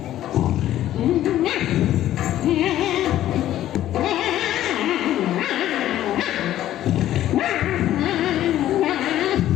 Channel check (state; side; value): quieter; right; 12.9 dB